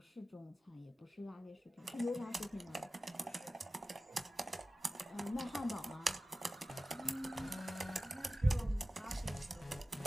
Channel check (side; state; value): both; normal; correlation 0.95